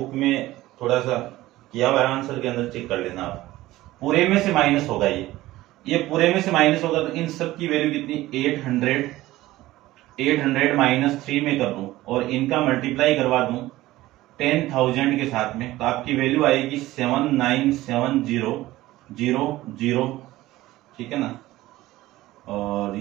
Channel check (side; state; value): left; quieter; 16.9 dB